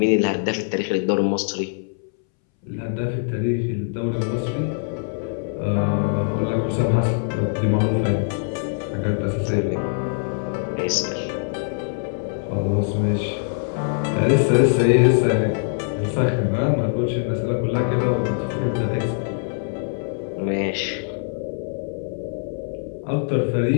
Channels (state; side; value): silent; right; 62 dB below the other